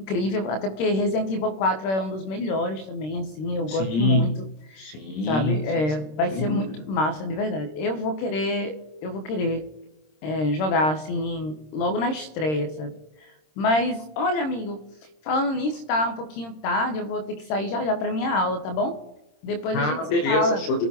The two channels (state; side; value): late; right; 26 ms